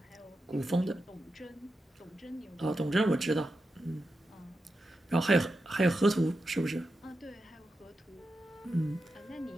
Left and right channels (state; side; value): normal; both; correlation 0.89